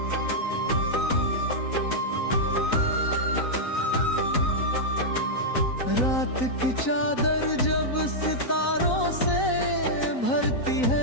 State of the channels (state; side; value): late; right; 4.0 ms